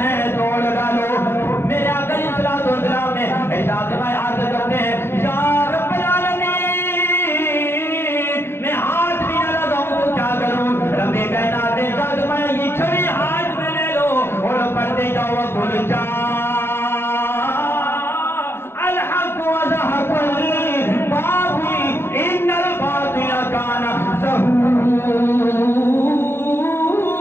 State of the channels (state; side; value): late; right; 0.11 ms